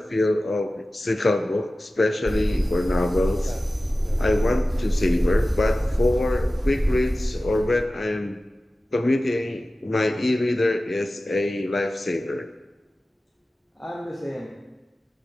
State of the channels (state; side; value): normal; both; correlation 0.96